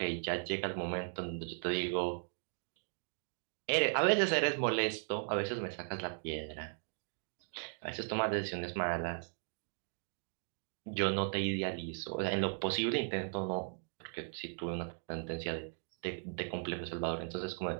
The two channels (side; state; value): left; silent; 53 dB below the other